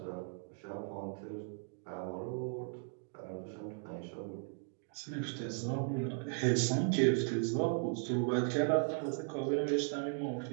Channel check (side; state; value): left; silent; 53 dB below the other